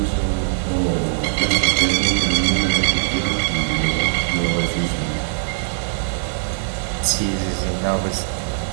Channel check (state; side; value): silent; left; 65 dB below the other